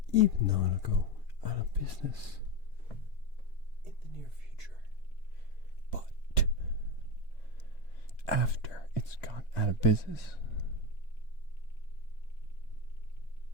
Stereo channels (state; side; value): late; right; 2.2 ms